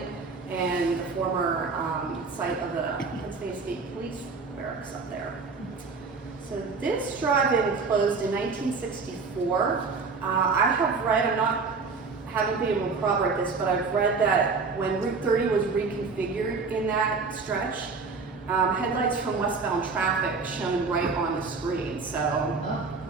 and the former site of the Pennsylvania State Police barracks up there. So this drive-in closed in 1964. I have read, haven't been able to corroborate this, but I've read that when Route 30 was reconfigured in that stretch, headlights from westbound traffic shone right on the screen. So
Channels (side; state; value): left; quieter; 4.5 dB